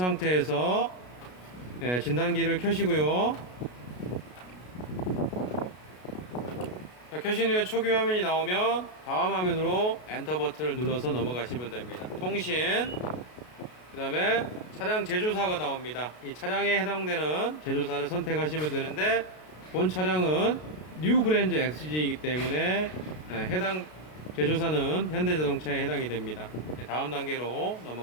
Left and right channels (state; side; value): late; right; 33 ms